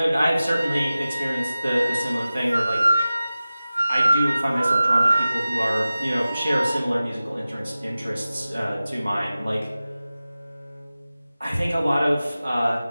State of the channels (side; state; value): both; inverted; correlation -0.96